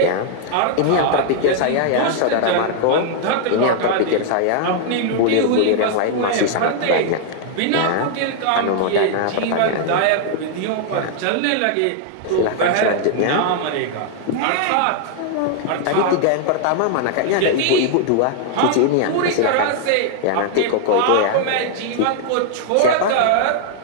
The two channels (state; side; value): different; both; correlation 0.00